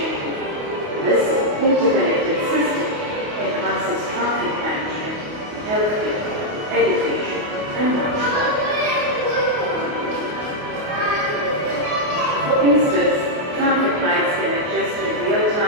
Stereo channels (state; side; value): late; left; 28 ms